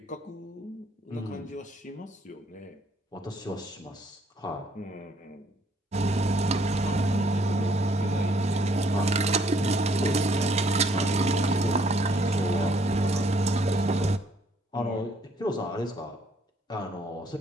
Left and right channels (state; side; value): normal; both; correlation 0.65